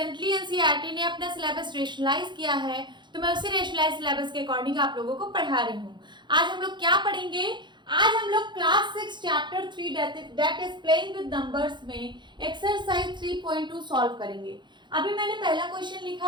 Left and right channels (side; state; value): left; late; 0.22 ms